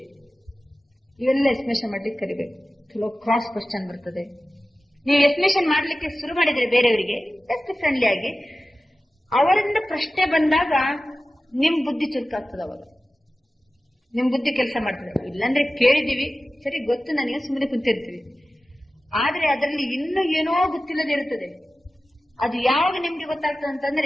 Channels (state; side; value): normal; both; correlation 0.95